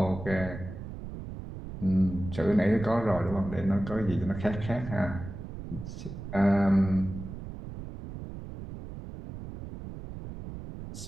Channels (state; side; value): noise; right; rumble, 10 dB below the sound